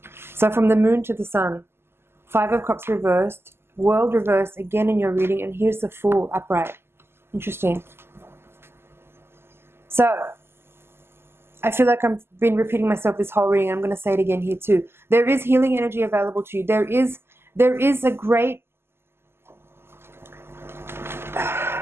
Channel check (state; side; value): late; left; 0.12 ms